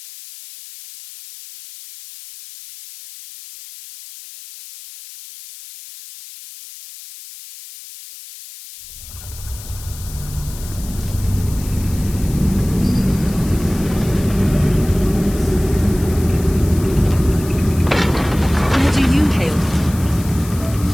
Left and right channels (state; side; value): noise; left; hiss, 16 dB below the sound